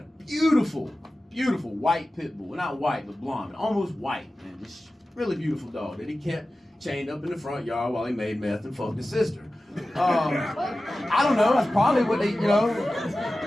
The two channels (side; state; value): both; normal; correlation 0.95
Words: beautiful, beautiful white pit bull. Not white, but blonde. Almost white, man. This really beautiful dog that he kept chained up in the front yard while he made meth and fucked his sister. I don't know. That's probably what they, you know.